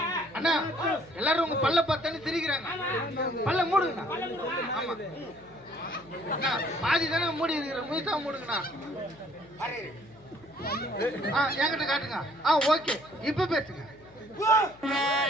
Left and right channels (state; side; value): noise; left; hum, 25 dB below the sound